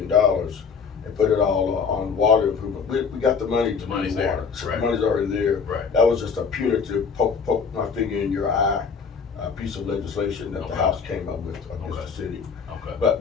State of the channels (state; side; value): quieter; right; 5.8 dB